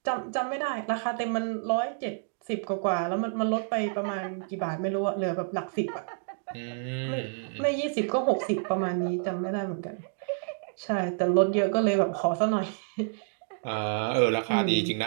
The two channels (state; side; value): silent; left; digital silence